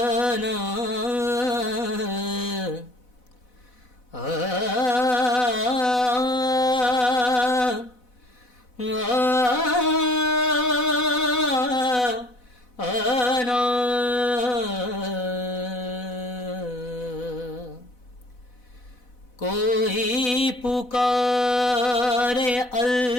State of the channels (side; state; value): right; late; 4.0 ms